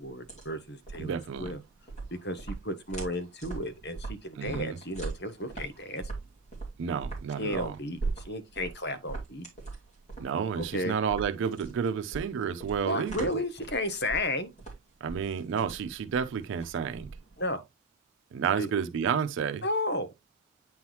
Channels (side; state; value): left; quieter; 3.1 dB